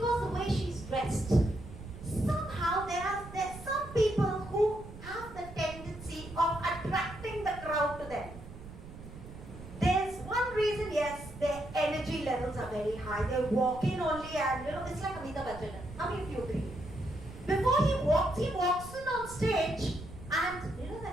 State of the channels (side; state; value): right; noise; rumble, 15 dB below the sound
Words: the way she's dressed. Somehow there's some people who have the tendency of attracting the crowd to them. There's one reason, yes, their energy levels are very high. They walk in only and, it's like Amitabh Bachchan. How many of you agree? Before he walks in on stage and,